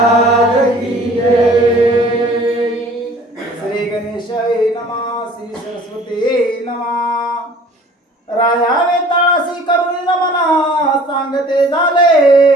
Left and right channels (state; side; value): normal; both; correlation 0.50